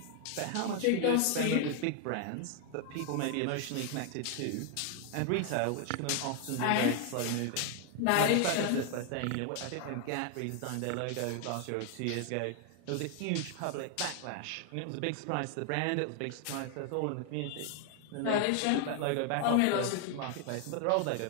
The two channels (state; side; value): different; both; correlation 0.00